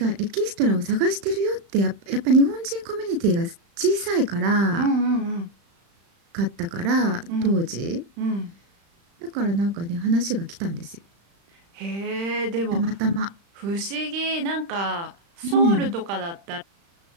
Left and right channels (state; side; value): late; left; 35 ms